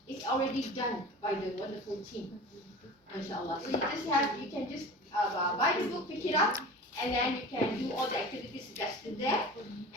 It's already done by the wonderful team, inshallah. So you can just buy the book, pick it up, and then you can do all the activities suggested there,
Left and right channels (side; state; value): both; normal; correlation 0.36